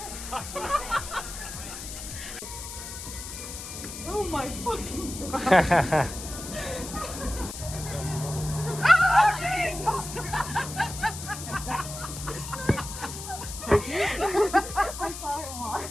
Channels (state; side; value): noise; left; hiss, 9 dB below the sound